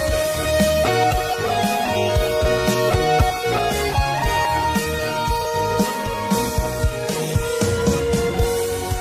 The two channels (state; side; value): identical; both; correlation 1.00